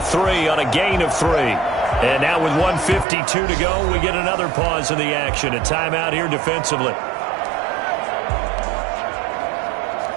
on a gain of 3. And now with 1:52 to go, we get another pause in the action. A timeout here defensively.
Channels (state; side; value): drops out; left; at 3.1 s